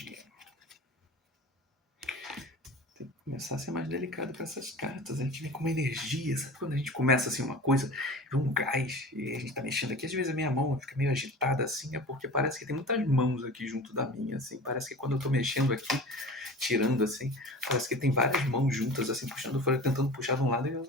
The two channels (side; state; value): both; normal; correlation 0.36